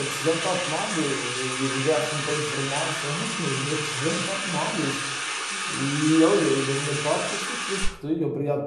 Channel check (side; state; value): both; identical; correlation 1.00